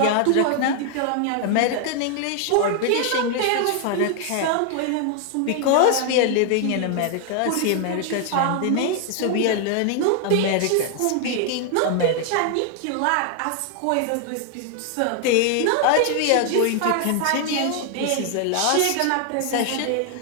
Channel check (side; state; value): both; different; correlation 0.00